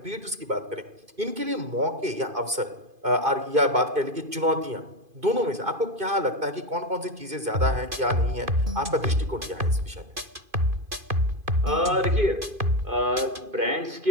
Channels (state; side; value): late; left; 2.5 ms